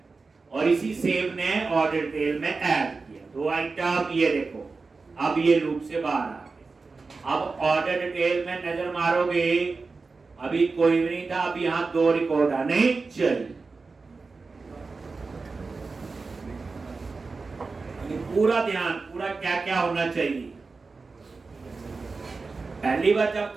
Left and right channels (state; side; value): quieter; left; 4.1 dB